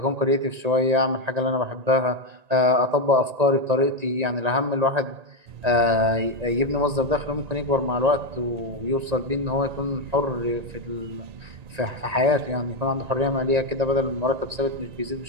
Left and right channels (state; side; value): late; left; 1.9 ms